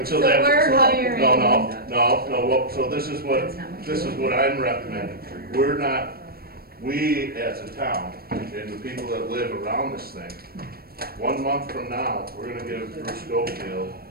So that- we're hiring. No, so this is what I'm recommending. We as a town, and the people that live around this thing, 1 month from now, we're gonna give Bruce Schofield,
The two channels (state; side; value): late; left; 0.44 ms